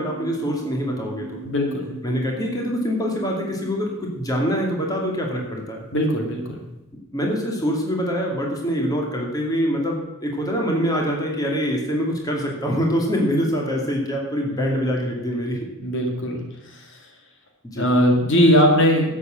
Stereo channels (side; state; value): both; normal; correlation 0.44